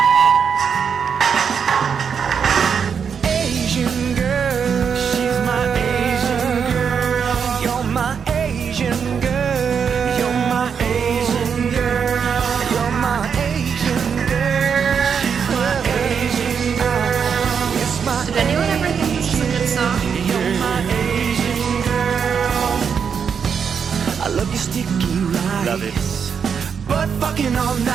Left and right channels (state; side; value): quieter; left; 6.8 dB